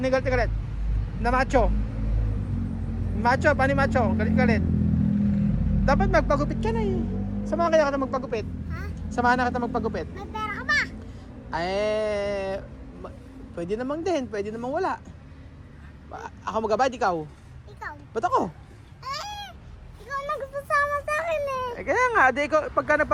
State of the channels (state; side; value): identical; both; correlation 1.00